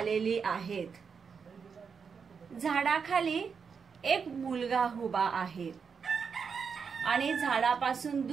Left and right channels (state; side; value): quieter; left; 6.0 dB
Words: आहेत। झाडाखाली एक मुलगा उभा आहे आणि झाडापासून